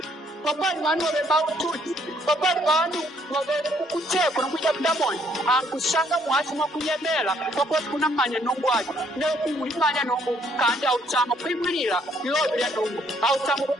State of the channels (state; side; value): normal; both; correlation 0.67